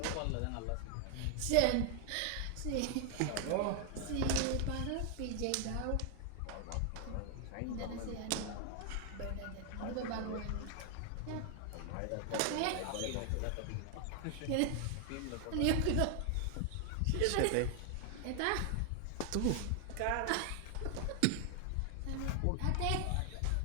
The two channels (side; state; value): both; different; correlation 0.00